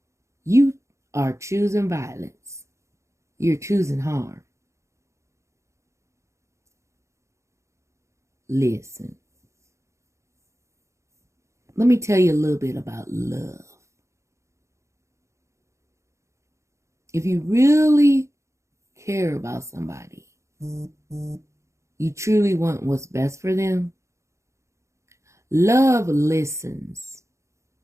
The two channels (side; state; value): left; late; 0.14 ms